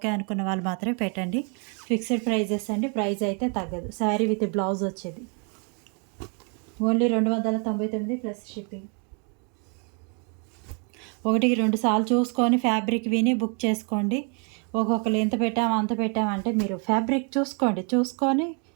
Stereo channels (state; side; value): quieter; left; 37.9 dB